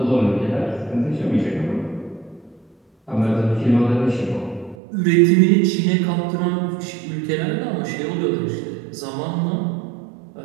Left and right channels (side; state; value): left; drops out; at 4.8 s